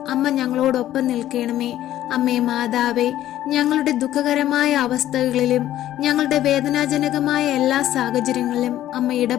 അമ്മ ഞങ്ങളോടൊപ്പം നിൽക്കണമേ. അമ്മേ മാതാവേ, ഞങ്ങളുടെ ദുഃഖകരമായ അവസ്ഥകളിലും ഞങ്ങളുടെ വേദനാജനകമായ എല്ലാ സാഹചര്യങ്ങളിലും അമ്മ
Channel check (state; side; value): quieter; right; 13.0 dB